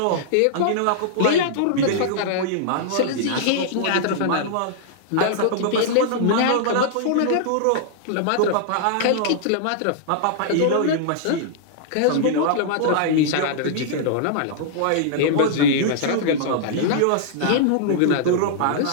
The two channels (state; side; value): different; both; correlation -0.01